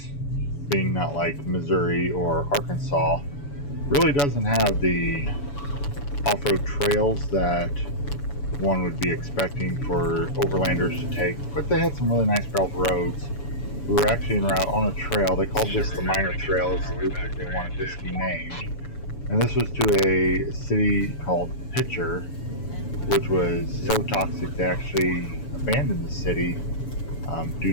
being not like Missouri or Arkansas, really doesn't have the off-road trails that one would be expecting for overlanders to take, but they had some really nice gravel roads. We were actually en route on a trail. They called this the minor trail. It's the loop that they wanted this to be named. And this was to a city called Pitcher, which was so toxic they actually abandoned the city due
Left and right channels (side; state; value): right; late; 7.0 ms